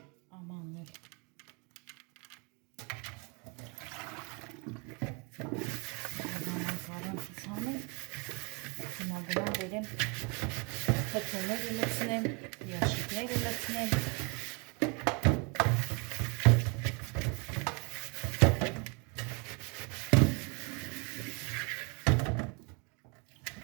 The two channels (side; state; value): left; quieter; 32.1 dB